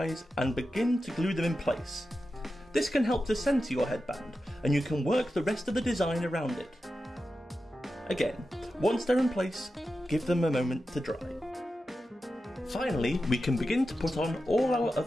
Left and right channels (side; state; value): both; normal; correlation 0.91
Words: and begin to glue them in place. This can help to centre your headband, and you can work the rest of the design around it. Again, once they're in place, give them a moment to dry. Finally, we can begin to put on all our